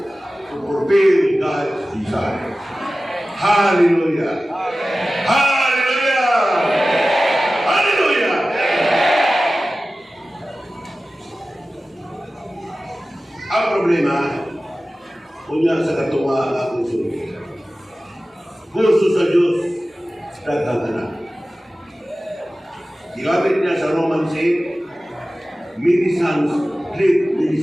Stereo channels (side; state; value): both; normal; correlation 0.96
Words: to fulfill God's desire. Hallelujah! Hallelujah! Hallelujah! Ang problema, kunya sa katunga ako sulit. Gusto sa Diyos, daghang anak. Ginamit niya sa Romans 8, many sons lead many